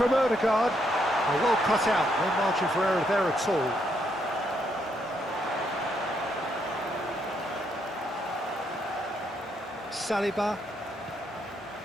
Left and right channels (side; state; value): both; normal; correlation 0.75